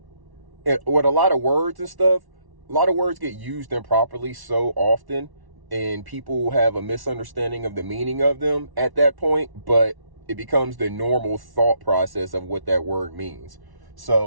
with a lot of words and stuff, a lot of words get used improperly so often, and people have a misunderstanding of the meaning of them at that point, but it becomes the normal thought process of what that word means.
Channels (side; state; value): left; late; 1.1 ms